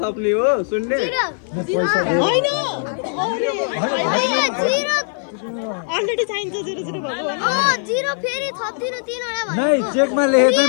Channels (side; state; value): right; silent; 55 dB below the other